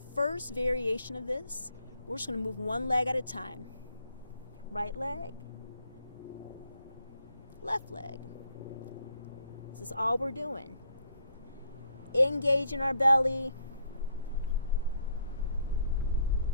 variation of this, we're just going to move one leg at a time. Right leg, left leg. This is all we're doing. Engaging our belly.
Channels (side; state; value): both; inverted; correlation -0.69